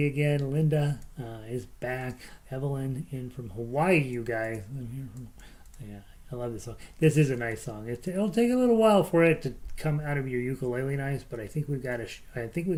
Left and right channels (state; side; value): identical; both; correlation 1.00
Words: again. Linda is back. Evelyn in from Hawaii, you guys. I'm here from, yeah. I love this song. This is a nice song. It'll take a little while for it to come out of your ukulele nice, but I think we've got